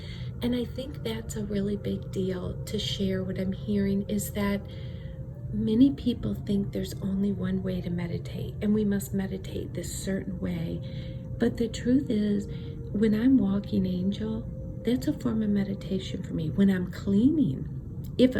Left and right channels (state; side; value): identical; both; correlation 1.00